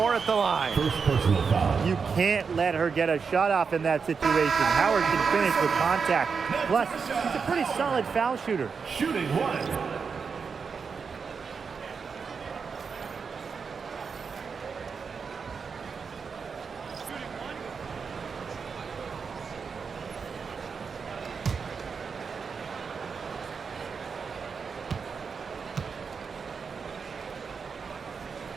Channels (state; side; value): quieter; left; 5.6 dB